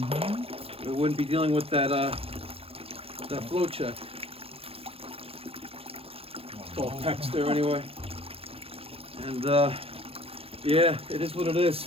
we wouldn't be dealing with that that flow check. It's all pecs there anyway. And yeah, it is what it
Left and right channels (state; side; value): late; left; 0.28 ms